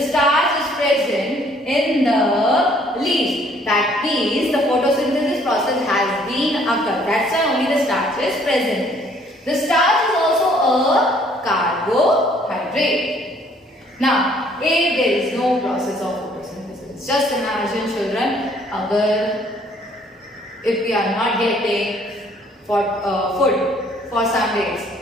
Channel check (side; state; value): both; normal; correlation 0.61